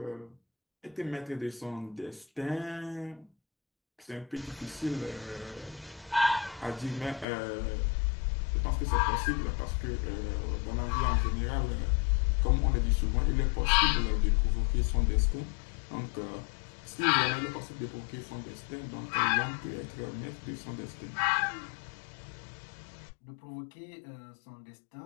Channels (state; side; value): drops out; right; at 7.2 s